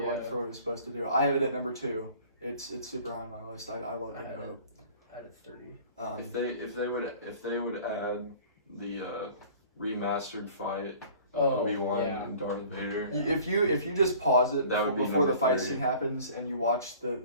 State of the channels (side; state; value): both; inverted; correlation -0.48